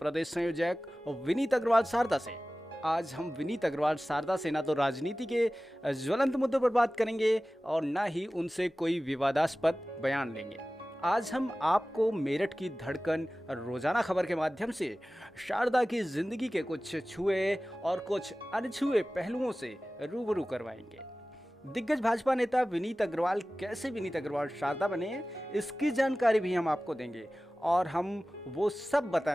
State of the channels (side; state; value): both; normal; correlation 0.97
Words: संयोजक विनीत अग्रवाल सारदा से। आज हम विनीत अग्रवाल सारदा से ना तो राजनीति के ज्वलंत मुद्दों पर बात करेंगे और ना ही उनसे कोई विवादास्पद बयान लेंगे। आज हम आपको मेरठ की धड़कन रोजाना खबर के माध्यम से शारदा की जिंदगी के कुछ छुए और कुछ अनछुए पहलुओं से रूबरू करवाएंगे। दिग्गज भाजपा नेता विनीत अग्रवाल कैसे विनीत अग्रवाल शारदा बने, इसकी जानकारी भी हम आपको देंगे और हम वो सब